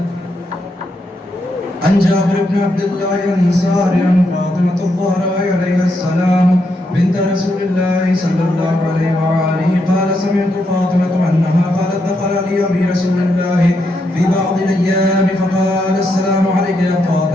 عن جابر بن عبد الله الأنصاري عن فاطمة الزهراء عليها السلام بنت رسول الله صلى الله عليه وآله قال سمعت فاطمة أنها قالت دخل علي أبي رسول الله في بعض الأيام فقال السلام عليك يا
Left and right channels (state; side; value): normal; both; correlation 0.80